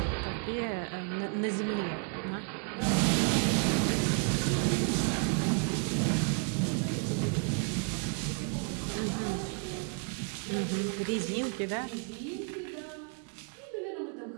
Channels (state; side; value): quieter; left; 34.6 dB